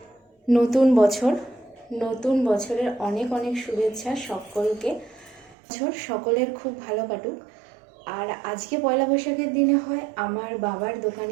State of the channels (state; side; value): drops out; left; at 5.6 s